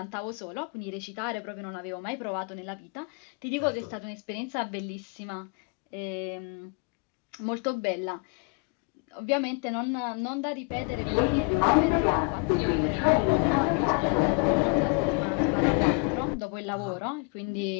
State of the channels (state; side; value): quieter; right; 33.6 dB